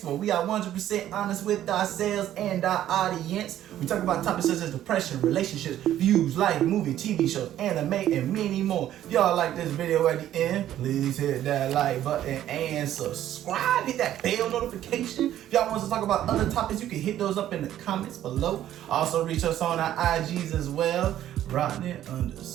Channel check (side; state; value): left; quieter; 12.1 dB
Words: where we are 100% honest with ourselves and our audience. We talk about topics such as depression, relationships, views, life, movie, TV shows, anime, and many more. If y'all like this video at the end, please hit that like button and subscribe. Hit that bell notification. If y'all want us to talk about other topics, you can hit those up in the comments below. Also, reach us on our IGs as well.